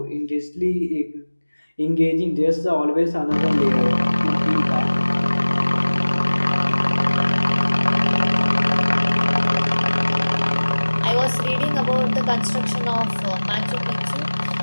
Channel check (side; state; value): both; inverted; correlation -1.00